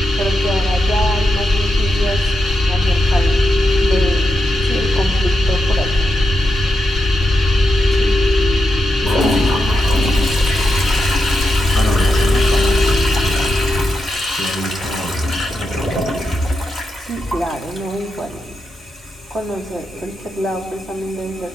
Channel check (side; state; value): both; normal; correlation 0.86